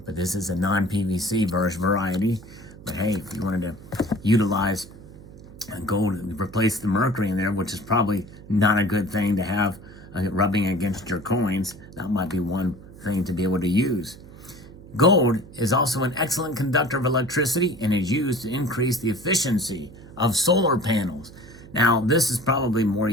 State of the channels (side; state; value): right; noise; hum, 18 dB below the sound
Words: this is a non-PVC variety. But hey, if you wanted to utilize gold, replace the mercury in there, which is probably not a good thing to have rubbing against your coins, that might be one thing to be able to use. Gold is also an excellent conductor of electricity and is used to increase the efficiency of solar panels. Now, this is probably more